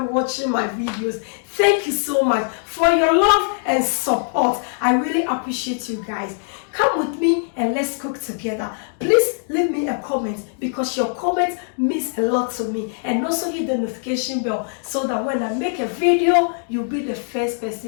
watching my videos, thank you so much for your love and support. I really appreciate you guys. Come with me and let's cook together. Please leave me a comment because your comment means a lot to me. And also hit the notification bell so that when I make a video, you'll be the first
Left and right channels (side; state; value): right; silent; 57 dB below the other